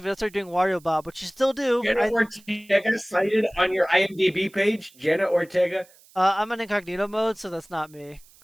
Video started doing Wario Bob, which you still do. Jenna Ortega cited on your IMDb page. Jenna Ortega. I'm in incognito mode, so that's not me.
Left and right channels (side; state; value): right; noise; hiss, 27 dB below the sound